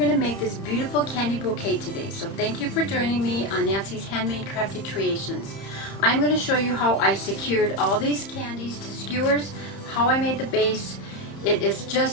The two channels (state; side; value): late; right; 31 ms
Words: to make this beautiful candy bouquet today. So thank you for joining me on Nancy's Handmade Crafty Creations. I'm going to show you how I secured all these candies to skewers, how I made the base. It is